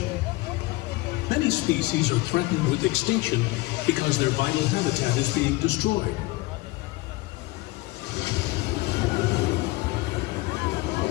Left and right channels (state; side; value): quieter; right; 21.1 dB